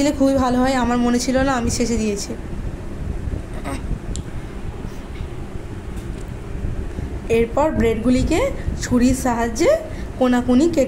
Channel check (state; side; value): identical; both; correlation 1.00